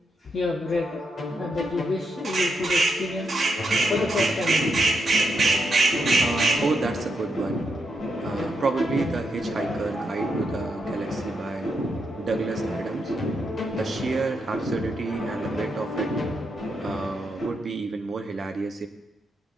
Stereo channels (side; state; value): both; normal; correlation 0.82